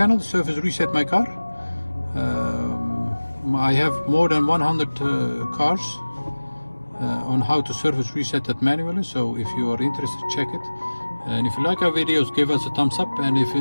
Service Reset My Car. I have more than 100 cars on how to service reset that manually, so if you are interested, check it. And if you like our videos, give us a thumbs up, and if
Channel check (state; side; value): inverted; both; correlation -1.00